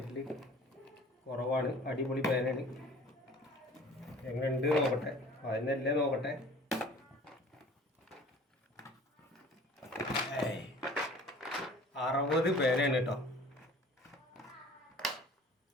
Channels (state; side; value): normal; both; correlation 0.48